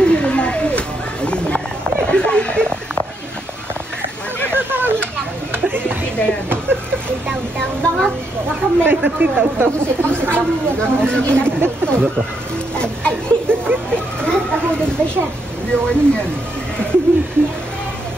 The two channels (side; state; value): both; normal; correlation 0.78